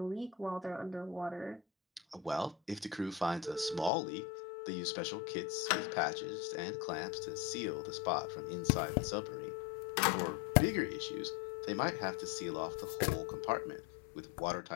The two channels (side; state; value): right; drops out; at 3.9 s